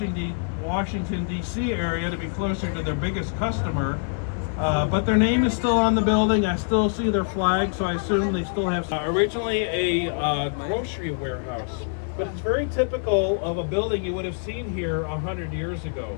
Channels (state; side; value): silent; right; digital silence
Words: D.C. area to be closer to their biggest customer. But their name is still on the building. I still see their flag, so I assume they still have originally a grocery warehouse. But it's very typical of a building you would have seen here 100 years